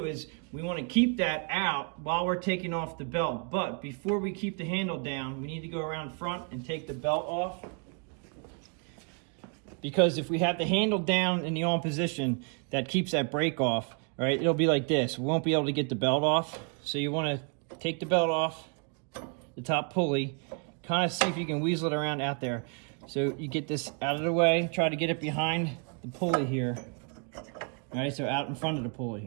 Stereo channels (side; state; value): left; quieter; 39.0 dB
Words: is we want to keep that out while we're taking off the belt. But before we keep the handle down, we need to go around front and take the belt off. Because if we have the handle down in the on position, that keeps that brake off. All right, it'll be like this. We won't be able to get the belt off. So you want to take the belt off the top pulley, kind of see if you can weasel it around out there. So you get this out of the way, try to get it behind the pulley here. All right, so out in front of the